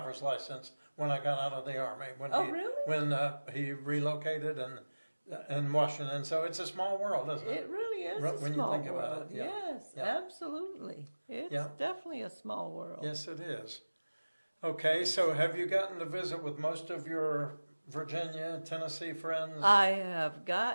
license when I got out of the Army. Really? When he relocated in Washington. So it's a small world, isn't it? It really is When a you small think about world. it, yeah. Yes, Yeah. absolutely. It's Yeah. definitely a small world. Yes, it is. Okay, so have you gotten to visit with most of your Virginia, Tennessee friends? I have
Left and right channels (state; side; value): inverted; both; correlation -1.00